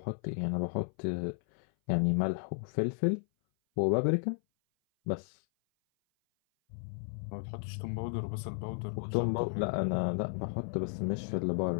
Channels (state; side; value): silent; right; 55 dB below the other